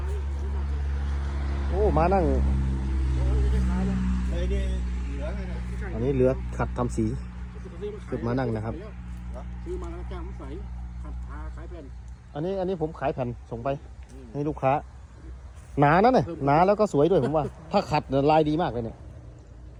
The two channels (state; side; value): identical; both; correlation 1.00